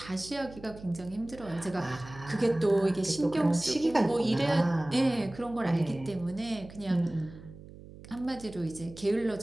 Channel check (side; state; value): right; noise; hum, 17 dB below the sound